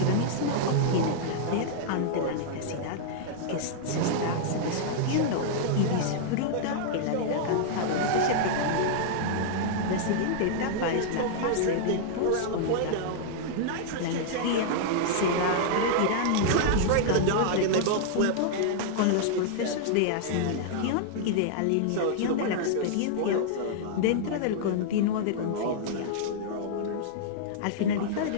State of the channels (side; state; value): both; different; correlation -0.01